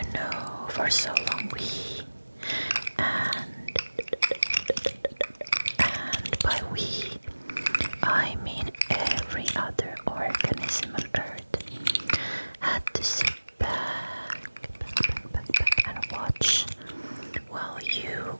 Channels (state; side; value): inverted; both; correlation -1.00